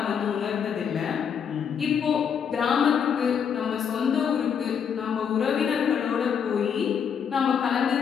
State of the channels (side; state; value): right; quieter; 7.4 dB